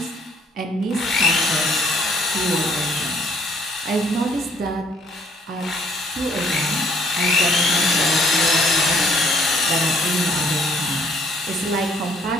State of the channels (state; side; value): normal; both; correlation 0.62